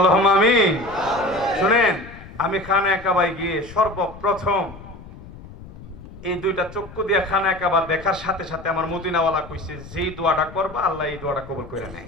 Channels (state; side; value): noise; left; rumble, 17 dB below the sound